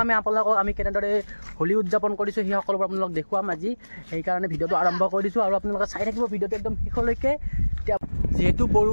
আমি আপোনালোকক আমি কেনেদৰে হোলী উদযাপন কৰিছোঁ সেই সকলোবোৰ আপোনালোকক দেখুৱাম আজি। সেইকাৰণে ভিডিঅ'টো আৰম্ভ কৰি দিছোঁ আৰু আপোনালোকে চাই থাকিব ভিডিঅ'টো একদম শেষলৈকে। এতিয়া যিহেতু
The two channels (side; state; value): both; inverted; correlation -1.00